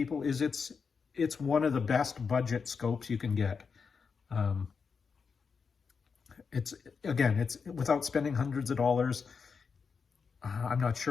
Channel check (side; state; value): right; quieter; 5.6 dB